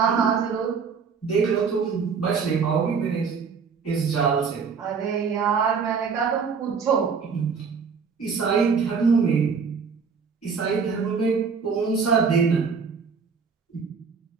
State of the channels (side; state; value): left; quieter; 5.7 dB